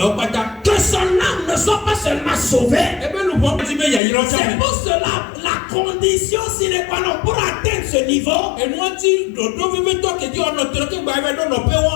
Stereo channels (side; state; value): right; drops out; at 4.0 s